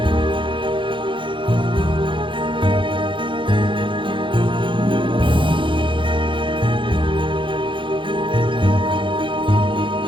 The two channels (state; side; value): late; left; 0.24 ms